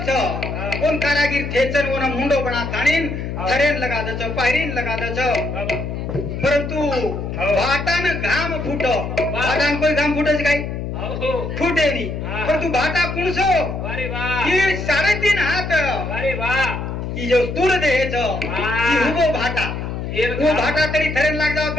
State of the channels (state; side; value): noise; left; hum, 5 dB below the sound